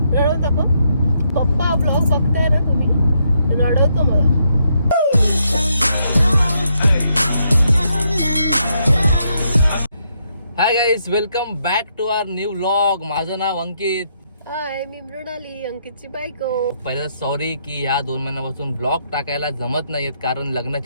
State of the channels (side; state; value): both; inverted; correlation -0.77